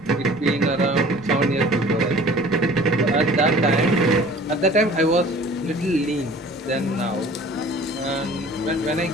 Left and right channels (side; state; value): both; normal; correlation 0.47